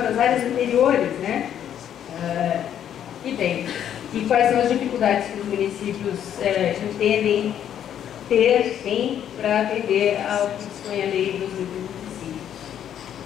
das áreas anteriores, né? E quais são as dificuldades que os municípios entendem tem para atender ao que dispõe a lei 2025.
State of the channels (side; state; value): right; quieter; 9.9 dB